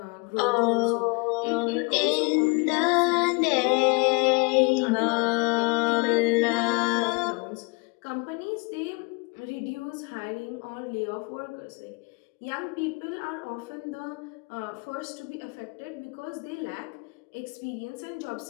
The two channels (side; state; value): right; quieter; 30.0 dB